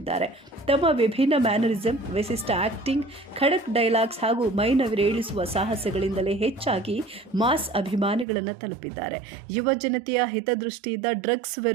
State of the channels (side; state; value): left; drops out; at 8.2 s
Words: ತಮ್ಮ ವಿಭಿನ್ನ ಮ್ಯಾನರಿಸಂ, ವಿಶಿಷ್ಟ ಆಕ್ಟಿಂಗ್, ಖಡಕ್ ಡೈಲಾಗ್ಸ್ ಹಾಗೂ ಮೈನವಿರೇಳಿಸುವ ಸಾಹಸಗಳಿಂದಲೇ ಹೆಚ್ಚಾಗಿ ಮಾಸ್ ಅಭಿಮಾನಿಗಳನ್ನು ತಲುಪಿದ್ದಾರೆ. ಯುವ ಜನತೆಯ ಹಿತದೃಷ್ಟಿಯಿಂದ ಡ್ರಗ್ಸ್